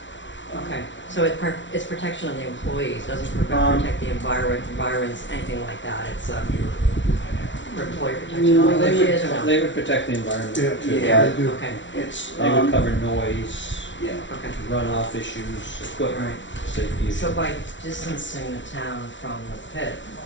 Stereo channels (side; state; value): right; late; 0.54 ms